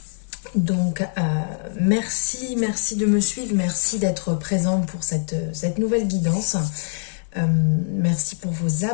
Donc merci de me suivre, merci d'être présent pour cette nouvelle guidance. Merci pour vos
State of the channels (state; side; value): silent; right; 58 dB below the other